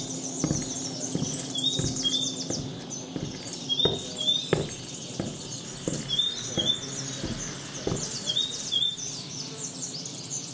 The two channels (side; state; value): both; identical; correlation 1.00